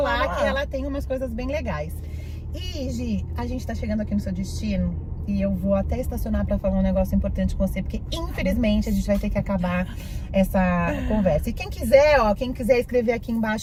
que ela tem umas coisas bem legais. E, Gi, a gente tá chegando aqui no seu destino. e eu vou até estacionar pra falar um negócio importante com você, porque infelizmente a gente vai ter que acabar essa conversa. E quem quiser, quem quiser escrever aqui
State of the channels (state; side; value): identical; both; correlation 1.00